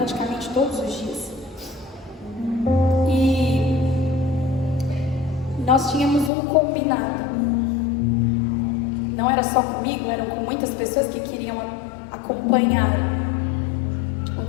todos os dias. E nós tínhamos um combinado. Não era só comigo, eram com muitas pessoas que queriam acompanhar o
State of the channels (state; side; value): drops out; right; at 6.3 s